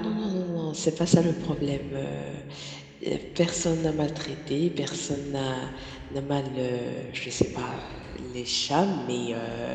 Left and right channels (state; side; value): identical; both; correlation 1.00